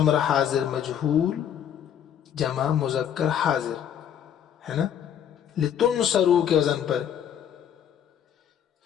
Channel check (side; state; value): right; quieter; 9.2 dB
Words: حاضر مجہول جمع مذکر حاضر, ہے نا, لتنصرو کے وزن پر.